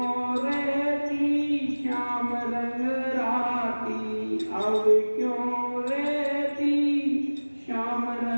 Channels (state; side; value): inverted; both; correlation -1.00